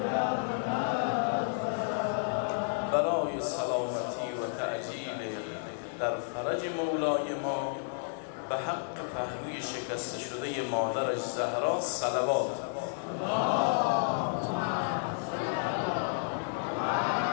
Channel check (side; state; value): right; silent; 57 dB below the other